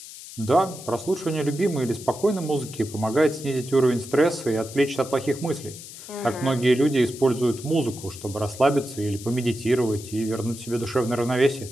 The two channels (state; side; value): noise; left; hiss, 14 dB below the sound